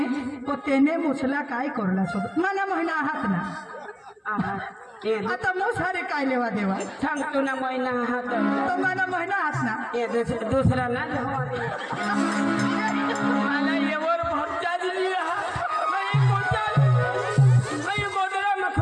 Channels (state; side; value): identical; both; correlation 1.00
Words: तो त्याने मुसला काय करला सोबत मला महिना आहात ना आता मुसारे काय लेवा देवा सांग तू ना महिना हात तो मला महिना आहात ना दुसरा ना मला येवर भरता दिली गोदरा मग